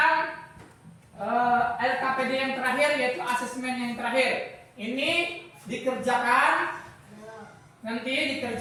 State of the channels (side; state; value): both; identical; correlation 1.00